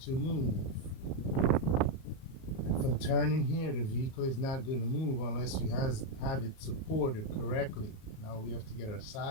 to move. From turning here, the vehicle is not going to move unless you have it supported correctly. Now we have to get our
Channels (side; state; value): right; late; 38 ms